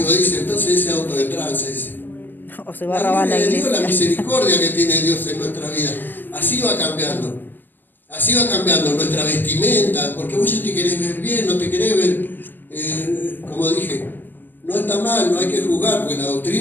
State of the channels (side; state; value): right; late; 0.093 ms